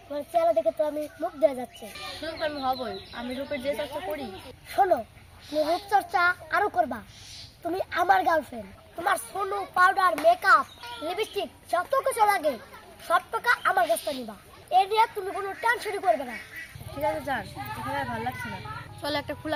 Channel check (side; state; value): both; identical; correlation 1.00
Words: তোমার চেহারা দেখে তো আমি মুগ্ধ হয়ে যাচ্ছি। শুধু আমি হবই, আমি রূপের যে চর্চা করি। শোনো, তুমি রূপচর্চা আরো করবা। তুমি আমার গার্লফ্রেন্ড। তোমার সোনু, পাউডার, মেকআপ, লিপস্টিক যত কিছু লাগে সব টাকা আমার কাছ থেকে নিবা। এ নিয়ে তুমি কোনো টেনশনই করবে না। ঠিক আছে যান, এখানে আর ভালো লাগছে না। চলো একটা